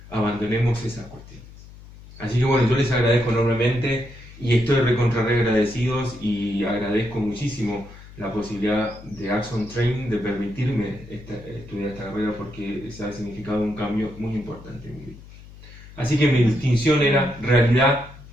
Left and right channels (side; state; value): left; noise; hum, 19 dB below the sound